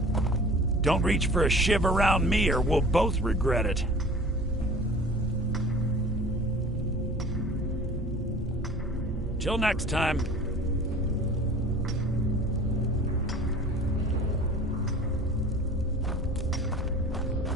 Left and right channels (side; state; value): both; normal; correlation 0.44